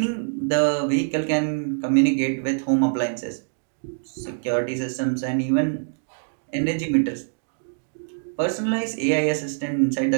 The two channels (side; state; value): left; silent; digital silence